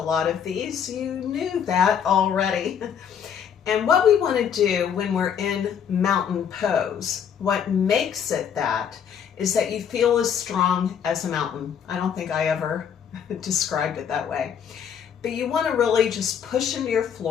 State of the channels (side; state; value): right; quieter; 8.0 dB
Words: of these, you knew that already. And what we want to do when we're in mountain pose, what makes it that, is that you feel as strong as a mountain. I don't think I ever described it that way. But you want to really just push into your